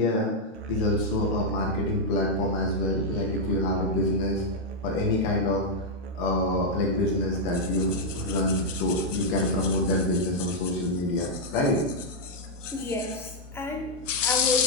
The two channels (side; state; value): both; normal; correlation -0.03